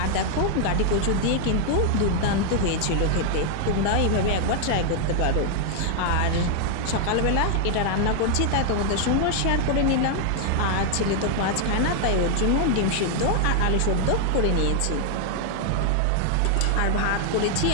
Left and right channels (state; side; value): different; both; correlation 0.00